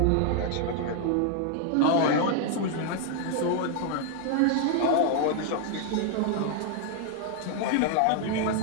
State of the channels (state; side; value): different; both; correlation 0.00